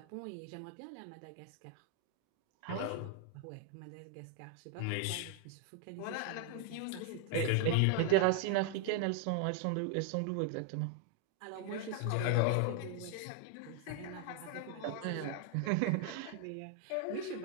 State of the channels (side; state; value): both; different; correlation 0.01